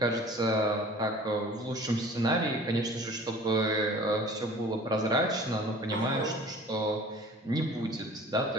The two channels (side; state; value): both; normal; correlation 0.46